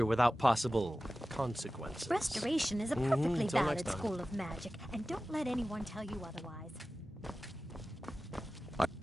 without possible consequences. Restoration is a perfectly Until valid next time. school of magic, and don't let anyone tell you otherwise.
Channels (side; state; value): both; normal; correlation 0.95